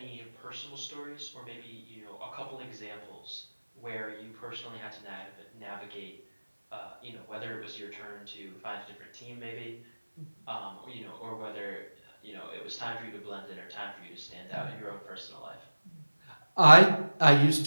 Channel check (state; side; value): inverted; both; correlation -1.00